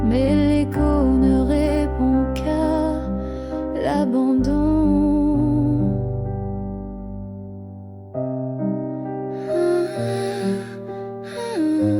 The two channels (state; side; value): identical; both; correlation 1.00